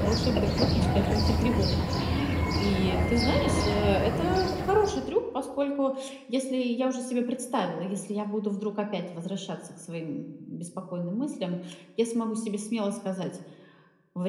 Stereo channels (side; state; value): both; identical; correlation 1.00